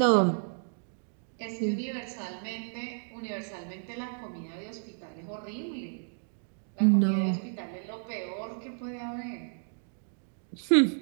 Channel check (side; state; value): left; silent; digital silence